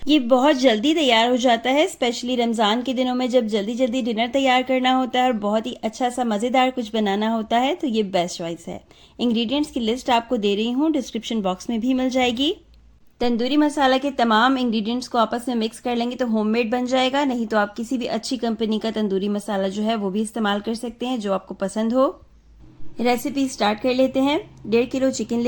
ये बहुत जल्दी तैयार हो जाता है, स्पेशली रमज़ान के दिनों में जब जल्दी जल्दी डिनर तैयार करना होता है और बहुत ही अच्छा सा मज़ेदार कुछ बनाना होता है तो ये बेस्ट चॉइस है। इंग्रेडिएंट्स की लिस्ट आपको दे रही हूँ, डिस्क्रिप्शन बॉक्स में भी मिल जाएगी। तंदूरी मसाला के तमाम इंग्रेडिएंट्स को आपस में मिक्स कर लेंगे तो होममेड बन जाएगा, नहीं तो आप किसी भी अच्छी कंपनी का तंदूरी मसाला जो है वो भी इस्तेमाल कर सकते हैं जो आपको पसंद हो। रेसिपी स्टार्ट कर लेते हैं। 1.5 किलो चिकन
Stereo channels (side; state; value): both; identical; correlation 1.00